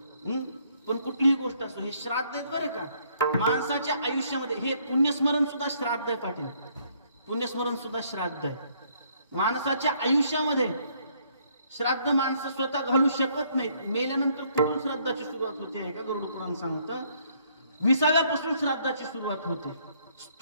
पण कुठलीही गोष्ट असो, हे श्राद्ध आहेत बरं का. माणसाच्या आयुष्यामध्ये हे पुण्यस्मरण सुद्धा श्राद्ध आहे पाटील. पुण्यस्मरण सुद्धा श्राद्ध आहे. माणसाच्या आयुष्यामध्ये श्राद्ध माणसं स्वतः घालू शकत नाहीत. मेल्यानंतर कुठून श्राद्धाची सुरुवात होते आहे का गरुड पुराण सांगतं. 20व्यापासून श्राद्धाची सुरुवात होते.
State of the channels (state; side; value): inverted; both; correlation -0.67